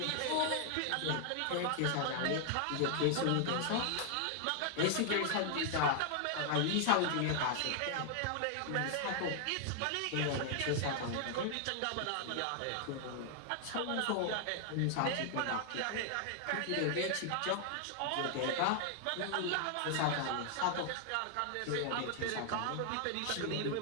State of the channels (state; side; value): different; both; correlation 0.00